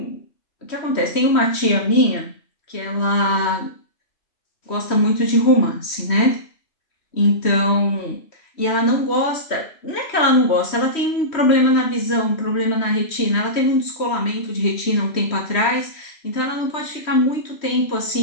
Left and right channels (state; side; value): late; right; 3.1 ms